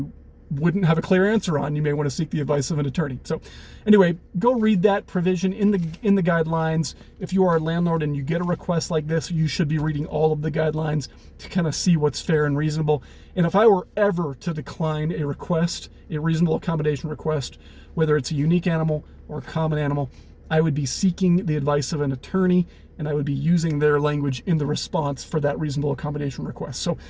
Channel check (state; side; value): identical; both; correlation 1.00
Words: wouldn't have a clear answer on. You may want to seek the advice of an attorney. So anyway, go read that provision in the guidelines. If you are a landlord and you get a request like this, you should be reading all of the guidelines to kind of see what's fair and reasonable. And if I were ever to decline a request, a reasonable accommodation request, whether it's a unique animal or a common animal, I would be seeking the advice of an attorney, and I would be using their language in the response for that reasonable accommodation request. So